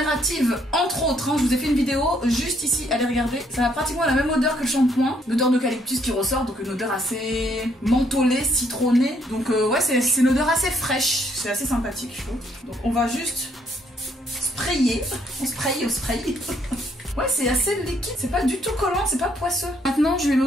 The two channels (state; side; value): normal; both; correlation 0.69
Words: entre autres. Hein. Je vous ai fait une vidéo juste ici, allez regarder. Ça a pratiquement la même odeur que le shampoing, l'odeur d'eucalyptus qui ressort, donc une odeur assez mentholée, citronnée. Donc ouais, c'est une odeur assez fraîche, c'est assez sympathique je trouve. Donc on va juste sprayer, on spray. Ouais, c'est assez liquide, c'est pas du tout collant, c'est pas poisseux. Maintenant, je vais